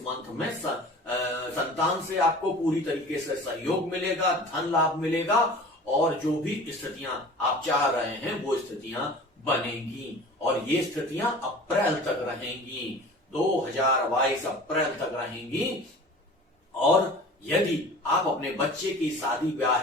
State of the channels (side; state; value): both; normal; correlation 0.41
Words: में संतान से आपको पूरी तरीके से सहयोग मिलेगा, धन लाभ मिलेगा, और जो भी स्थितियां आप चाह रहे हैं वो स्थितियां बनेंगी। और ये स्थितियां अप्रैल तक रहेंगी, 2022 अप्रैल तक रहेंगी। और यदि आप अपने बच्चे की शादी ब्याह